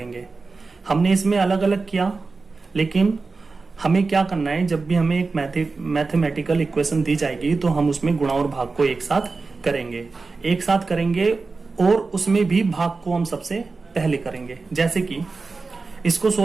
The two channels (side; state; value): left; quieter; 4.1 dB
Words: हमने इसमें अलग अलग किया, लेकिन हमें क्या करना है, जब भी हमें एक मैथमेटिकल इक्वेशन दी जाएगी तो हम उसमें गुणा और भाग को एक साथ करेंगे, और उसमें भी भाग को हम सबसे पहले करेंगे। जैसे कि इसको